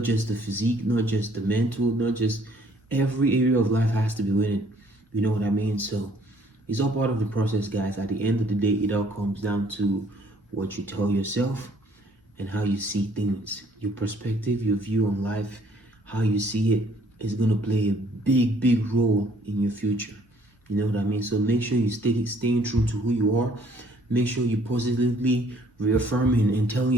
just the physique, not just the mental, not just every area of life has to be winning. You know what I mean? So it's all part of the process, guys. At the end of the day, it all comes down to what you tell yourself and how you see things. Your perspective, your view on life, how you see it is going to play a big, big role in your future. You know what I mean? So make sure you staying true to who you are. Make sure you positively reaffirming and telling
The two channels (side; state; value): both; normal; correlation 0.61